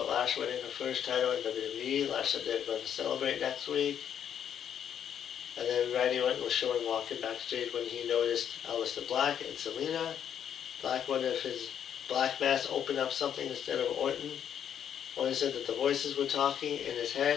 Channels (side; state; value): right; quieter; 9.0 dB